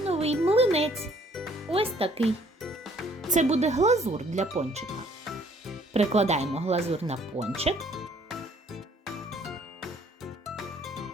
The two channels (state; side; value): normal; both; correlation 0.61